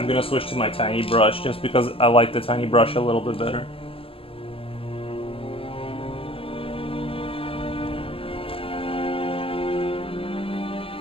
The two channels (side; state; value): right; late; 0.26 ms